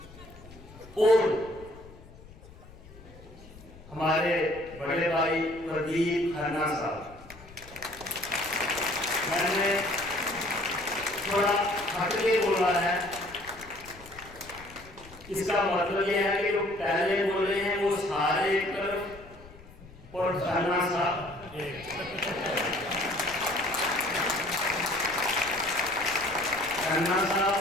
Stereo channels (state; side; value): noise; left; rumble, 20 dB below the sound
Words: और हमारे बड़े भाई प्रदीप खन्ना साहब, मैंने थोड़ा हट के बोला है, इसका मतलब यह है कि जो पहले बोले हैं वो सारे एक तरफ और खन्ना साहब खन्ना साहब